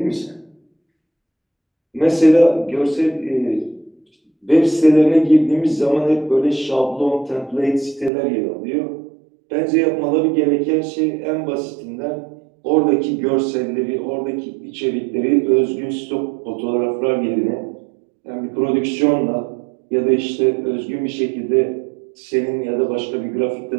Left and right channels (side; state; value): left; drops out; at 8.1 s